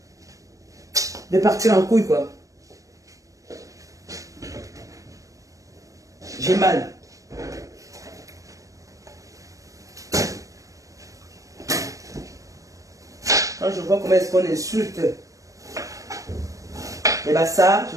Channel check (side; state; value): left; late; 0.16 ms